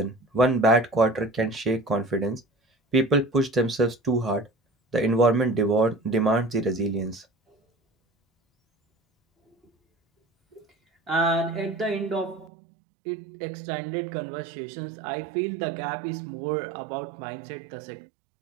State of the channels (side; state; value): left; drops out; at 12.5 s